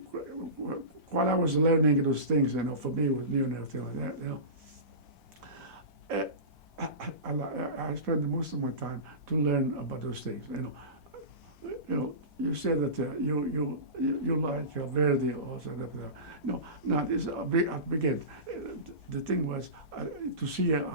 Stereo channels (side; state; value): left; late; 1.8 ms